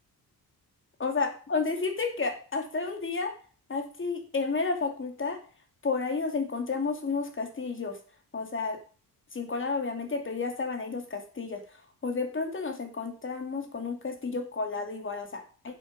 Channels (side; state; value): right; quieter; 3.9 dB